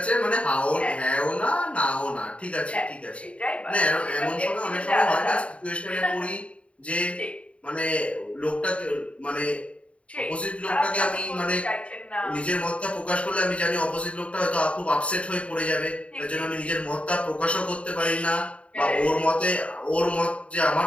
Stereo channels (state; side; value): late; right; 0.062 ms